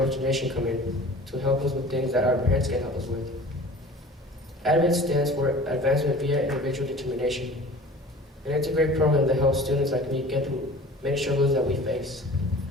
Nation come in, to help us with things that our parents can't help us with. Avid stands for Advancement via Individual Determination. And it's a great program that helps students like me get through many struggles that we face.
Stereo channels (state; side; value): normal; both; correlation 0.43